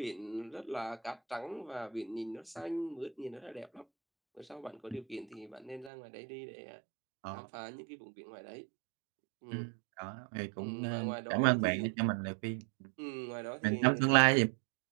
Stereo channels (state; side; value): drops out; left; at 5.9 s